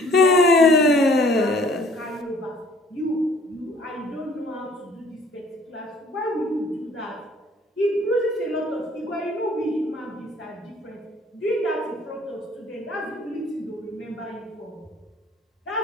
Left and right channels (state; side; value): normal; both; correlation 0.56